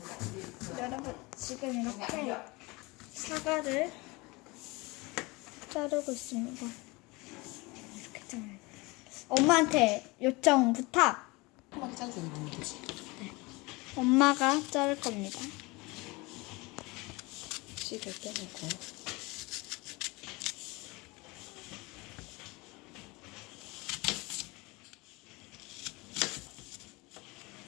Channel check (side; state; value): right; quieter; 24.5 dB